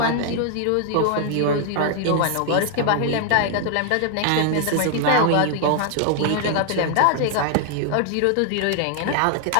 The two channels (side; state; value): both; different; correlation 0.00